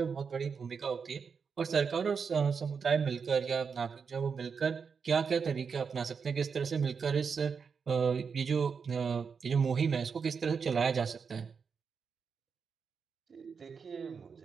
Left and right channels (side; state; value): left; quieter; 5.9 dB